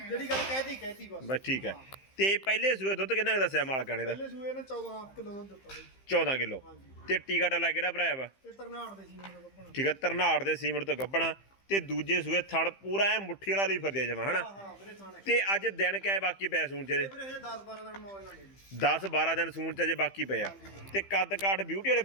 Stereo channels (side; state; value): right; late; 15 ms